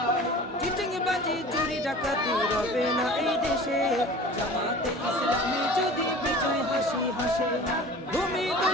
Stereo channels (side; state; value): both; normal; correlation 0.41